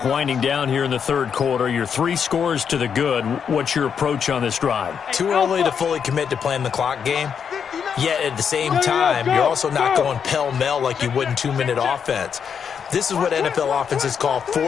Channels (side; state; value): right; quieter; 7.2 dB